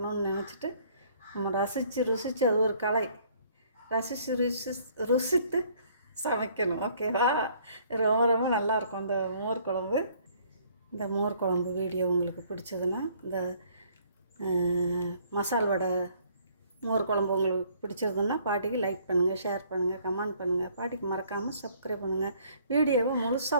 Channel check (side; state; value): both; inverted; correlation -0.61